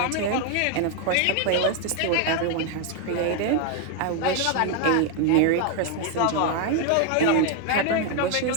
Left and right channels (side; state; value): both; different; correlation 0.01